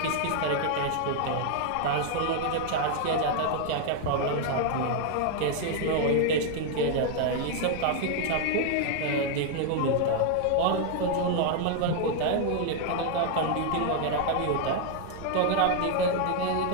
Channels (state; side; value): different; both; correlation 0.00